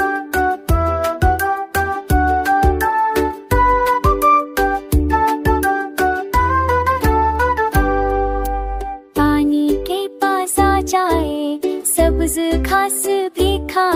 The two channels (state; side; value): identical; both; correlation 1.00